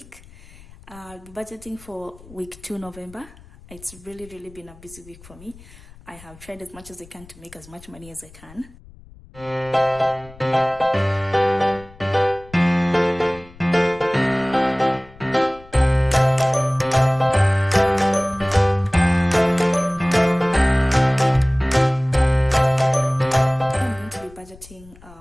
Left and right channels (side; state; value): left; noise; rumble, 22 dB below the sound